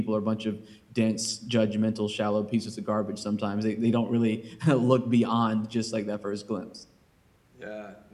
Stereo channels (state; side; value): identical; both; correlation 1.00